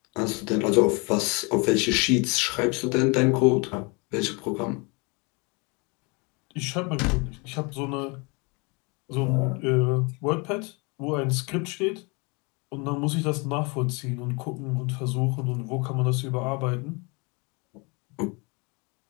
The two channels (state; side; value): quieter; right; 30.1 dB